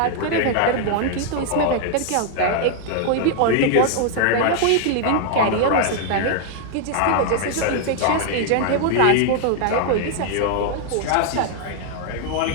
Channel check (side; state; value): both; different; correlation 0.00